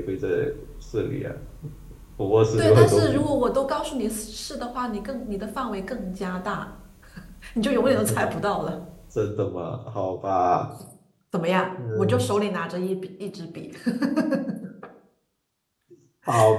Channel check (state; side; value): identical; both; correlation 1.00